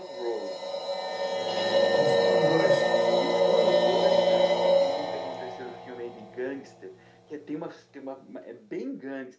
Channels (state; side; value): identical; both; correlation 1.00